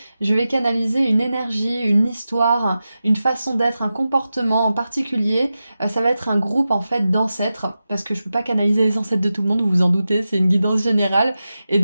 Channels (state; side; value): inverted; both; correlation -0.92